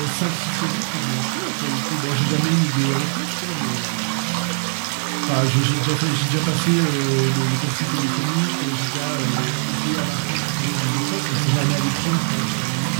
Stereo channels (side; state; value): left; silent; 65 dB below the other